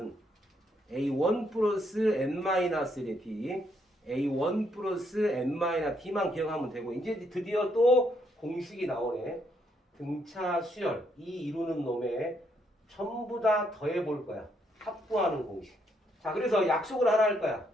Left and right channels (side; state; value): both; normal; correlation 0.74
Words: A1 플러스 N-1의 D, A1 플러스 N-D만 기억하면 되고 이제 드디어 또 공식이 나오네. 등차 수열 이 이루는 놈에 전부 다 더해 볼 거야. 합구하는 공식. 자, 그래서 약속을 하나 할 거야.